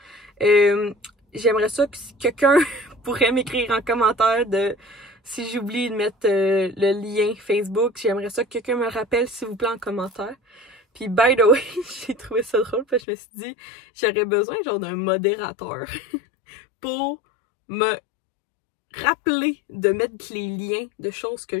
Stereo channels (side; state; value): right; drops out; at 13.0 s